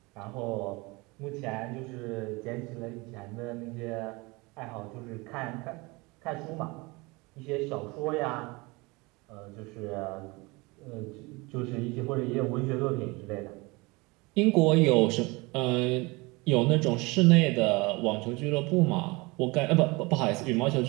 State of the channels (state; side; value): quieter; left; 25.1 dB